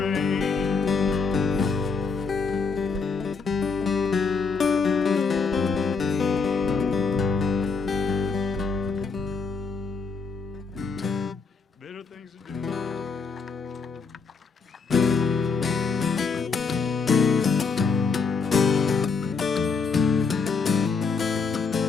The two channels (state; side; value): quieter; right; 4.9 dB